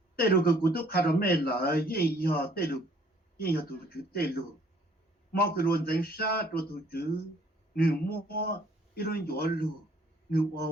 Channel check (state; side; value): normal; both; correlation 0.60